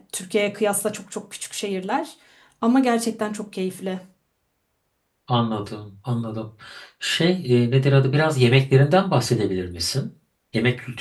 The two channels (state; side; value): identical; both; correlation 1.00